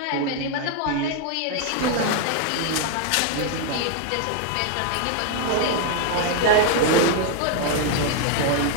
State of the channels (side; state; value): both; different; correlation 0.00